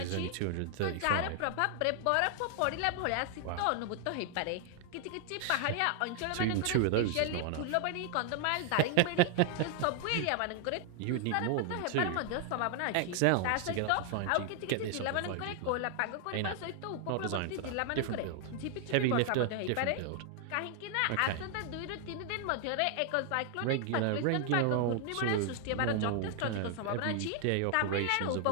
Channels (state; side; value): different; both; correlation 0.00